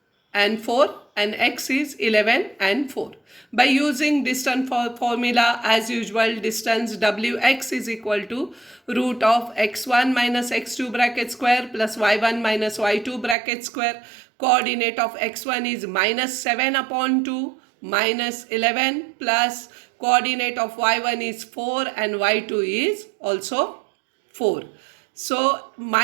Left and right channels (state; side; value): drops out; left; at 13.4 s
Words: and 4 and X is 11 and 4. By using distance formula, as usual, distance Wx is equal to root of x1 minus x2 bracket square plus y1 minus y2 bracket square. Coordinate of x1 is minus 7 upon 2 minus 11 plus coordinate of y1 is 4 and y2 is also 4. So